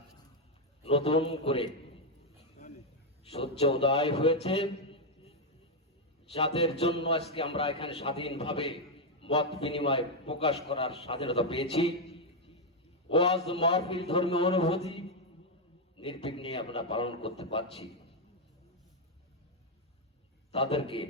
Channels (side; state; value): both; normal; correlation 0.01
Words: নতুন করে সূর্য উদয় হয়েছে, যাদের জন্য আজকে আমরা এখানে স্বাধীনভাবে মত বিনিময় প্রকাশ করার স্বাধীনতা পেয়েছি। ওয়াজ মাহফিল ধর্মীয় অনুভূতি নির্বিঘ্নে আমরা পালন করতে পারছি। তাদেরকে